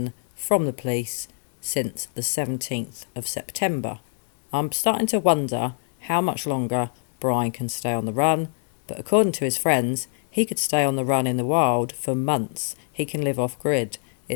from the police since the 17th of September. I'm starting to wonder how much longer Brian can stay on the run, but according to his friends, he could stay on the run in the wild for months. He can live off grid.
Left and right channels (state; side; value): silent; right; digital silence